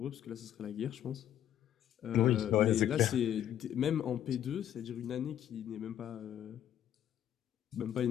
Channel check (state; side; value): quieter; right; 10.8 dB